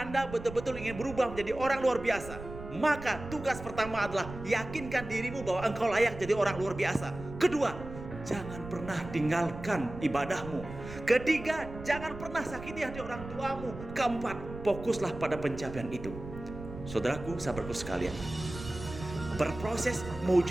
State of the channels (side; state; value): right; noise; rumble, 12 dB below the sound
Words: betul-betul ingin berubah menjadi orang luar biasa, maka tugas pertama adalah yakinkan dirimu bahwa engkau layak jadi orang luar biasa. Kedua, jangan pernah tinggalkan ibadahmu. Ketiga, jangan pernah sakiti hati orang tuamu. Keempat, fokuslah pada pencapaian itu. Saudaraku, sahabatku sekalian, berproses